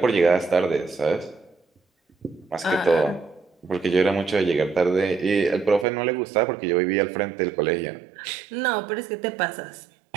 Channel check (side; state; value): left; drops out; at 5.9 s